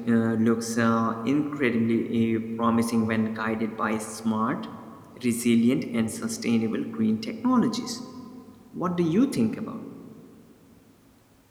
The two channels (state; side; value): identical; both; correlation 1.00